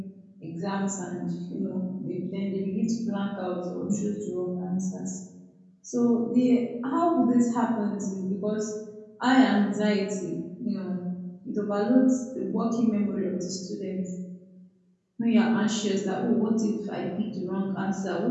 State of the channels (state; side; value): identical; both; correlation 1.00